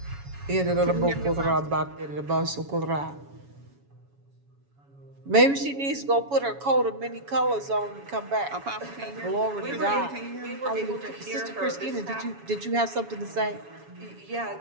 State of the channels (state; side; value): late; left; 7.1 ms